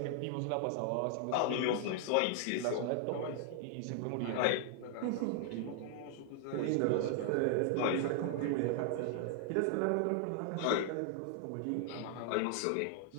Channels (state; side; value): different; both; correlation 0.00